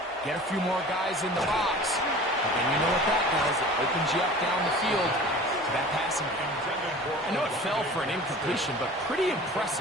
Get a few more guys in the box, and then you know what that does. It opens you up down the field to that passing game. I know it fell for an incompletion, but pretty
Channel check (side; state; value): both; normal; correlation 0.41